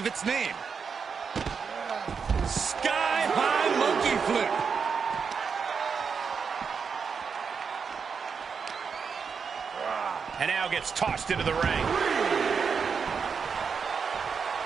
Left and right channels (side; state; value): left; quieter; 5.9 dB